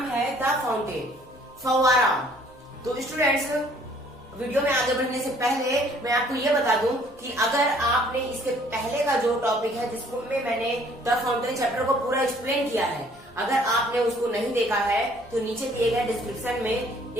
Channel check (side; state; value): both; normal; correlation 0.59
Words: है द फाउंटेन, फव्वारा। तो स्टूडेंट्स, वीडियो में आगे बढ़ने से पहले मैं आपको ये बता दूं कि अगर आपने इसके पहले का जो टॉपिक है जिसमें मैंने द फाउंटेन चैप्टर को पूरा एक्सप्लेन किया है, अगर आपने उसको नहीं देखा है तो नीचे दिए गए डिस्क्रिप्शन में